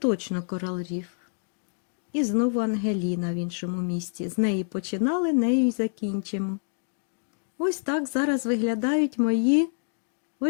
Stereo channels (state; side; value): silent; right; digital silence